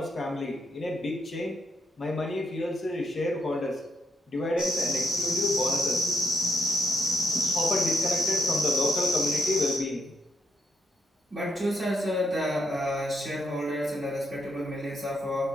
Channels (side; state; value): both; normal; correlation 0.74